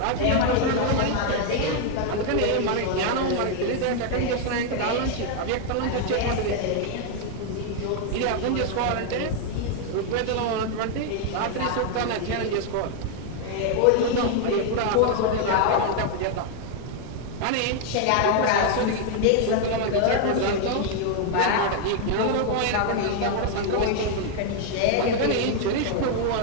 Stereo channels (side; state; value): both; different; correlation 0.00